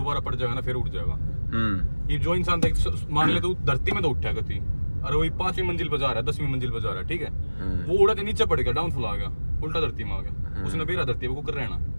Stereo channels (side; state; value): both; inverted; correlation -1.00